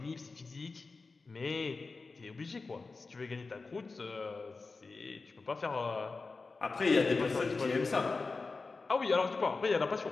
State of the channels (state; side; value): quieter; right; 4.0 dB